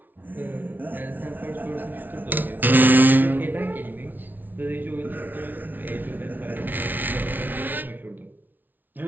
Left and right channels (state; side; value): late; left; 0.086 ms